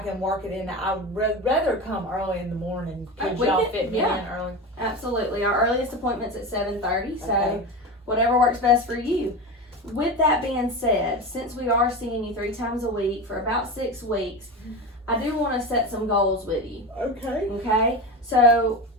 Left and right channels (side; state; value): both; normal; correlation 0.24